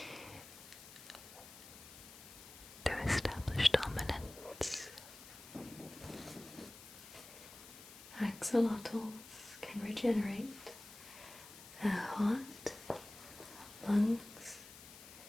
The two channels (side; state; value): left; noise; hiss, 16 dB below the sound